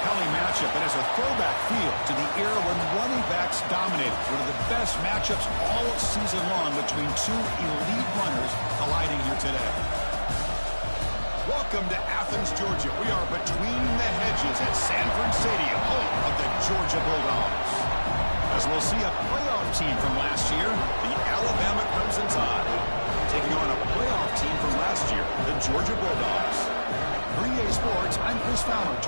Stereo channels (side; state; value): both; inverted; correlation -1.00